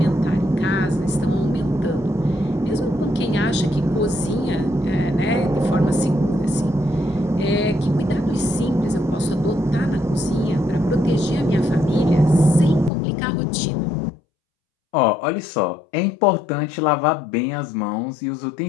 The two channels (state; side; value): drops out; right; at 12.9 s